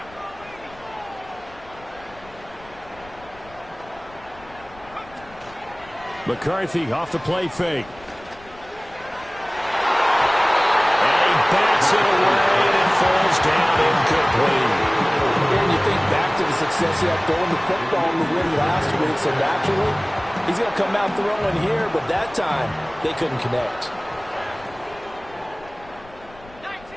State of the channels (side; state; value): left; noise; rumble, 23 dB below the sound